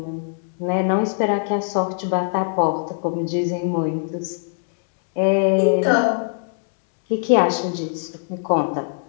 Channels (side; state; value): right; silent; digital silence